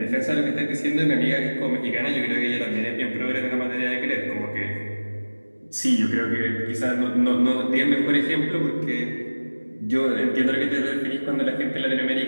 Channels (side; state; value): both; inverted; correlation -1.00